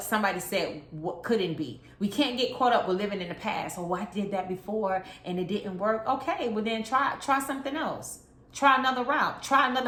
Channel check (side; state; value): both; identical; correlation 1.00